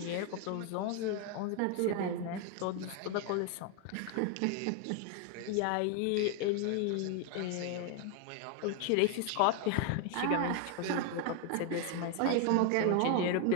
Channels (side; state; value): both; different; correlation 0.01